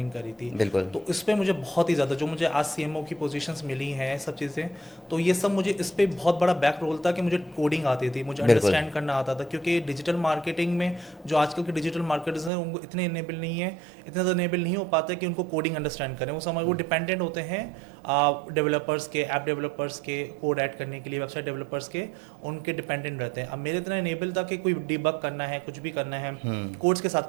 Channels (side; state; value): left; drops out; at 12.5 s